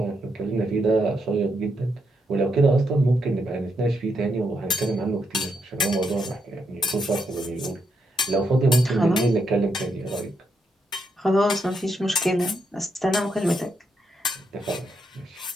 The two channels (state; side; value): normal; both; correlation 0.79